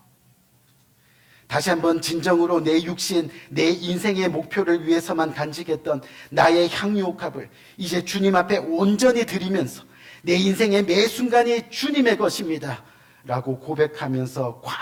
다시 한번 진정으로 내 육신, 내 인생의 목표를 위해서만 간직했던 나의 향유 옥합을 이제 주님 앞에 온전히 드리면서 내 인생의 매 순간이 주님의 것입니다 라고 고백하면서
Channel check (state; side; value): identical; both; correlation 1.00